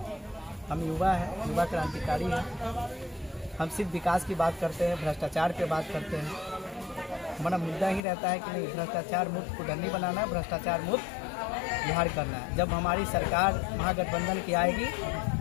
हम युवा हैं, युवा क्रांतिकारी हैं। हम सिर्फ विकास की बात करते हैं, भ्रष्टाचार पे बात करते हैं। हमारा मुद्दा ही रहता है कि नहीं, भ्रष्टाचार मुक्त कुडनी बनाना है, भ्रष्टाचार मुक्त बिहार करना है। जब हमारी सरकार महागठबंधन की आएगी,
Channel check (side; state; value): right; drops out; at 8.0 s